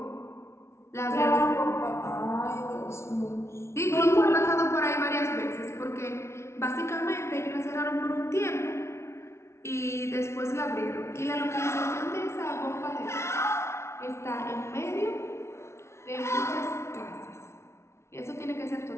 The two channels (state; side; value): late; right; 0.13 ms